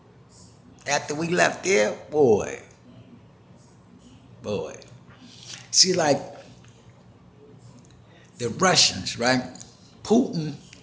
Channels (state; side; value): identical; both; correlation 1.00